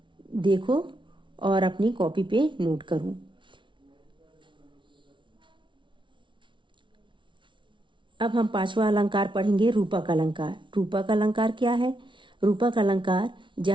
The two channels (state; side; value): late; left; 0.24 ms